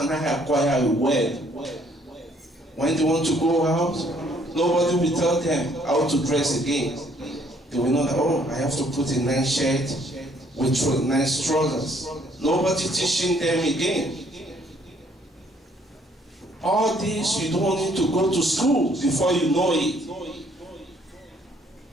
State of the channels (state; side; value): normal; both; correlation 0.64